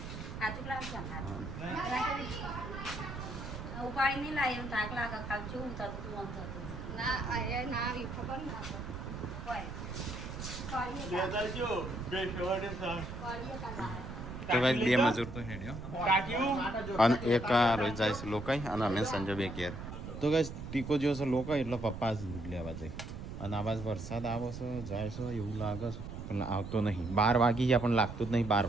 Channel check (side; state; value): right; noise; rumble, 9 dB below the sound